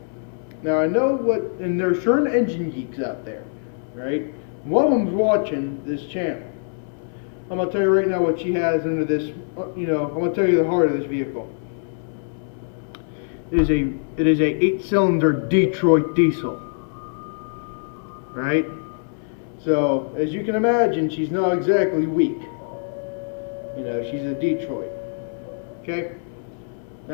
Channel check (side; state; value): right; silent; 63 dB below the other